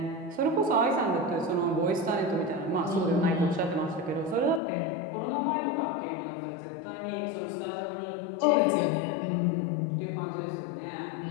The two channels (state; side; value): drops out; right; at 4.6 s